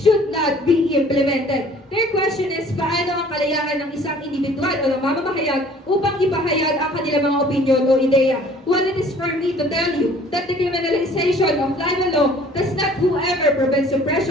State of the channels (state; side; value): normal; both; correlation 0.53